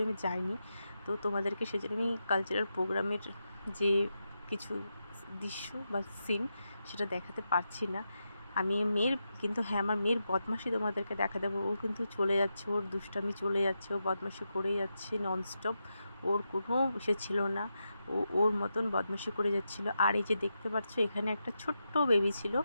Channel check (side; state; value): both; inverted; correlation -0.87